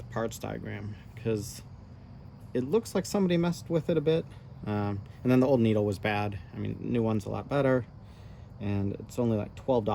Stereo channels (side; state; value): both; identical; correlation 1.00